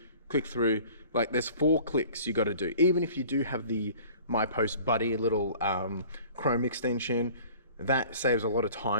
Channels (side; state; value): both; inverted; correlation -0.47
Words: like there's 4 clicks you gotta do. Even if you do have the My Post Buddy little Chrome extension, that saves a lot of